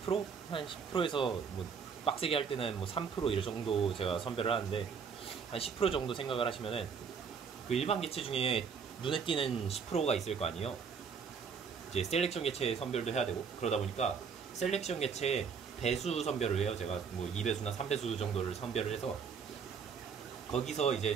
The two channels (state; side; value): quieter; left; 6.2 dB